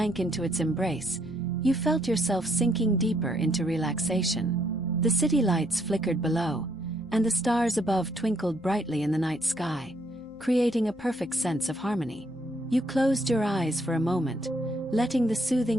into its embrace, you felt yourself sinking deeper into relaxation. The city lights flickered below, and the stars above twinkled brightly in the night sky, creating a perfect sense of harmony. You closed your eyes for a moment, letting the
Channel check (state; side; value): noise; right; hum, 28 dB below the sound